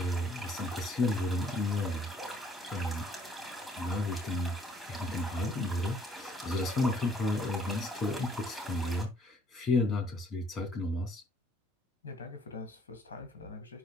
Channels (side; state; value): both; normal; correlation 0.63